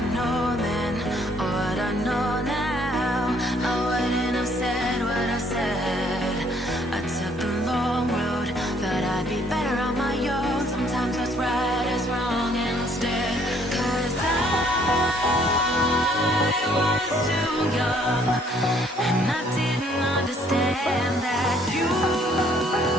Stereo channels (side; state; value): both; normal; correlation 0.64